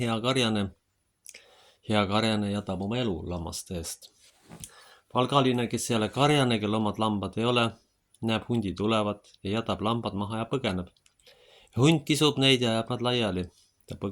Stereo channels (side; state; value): both; identical; correlation 1.00